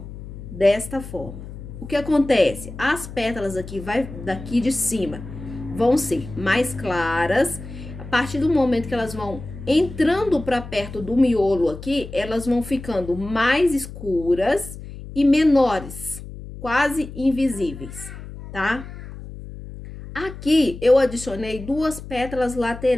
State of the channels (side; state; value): left; noise; hum, 12 dB below the sound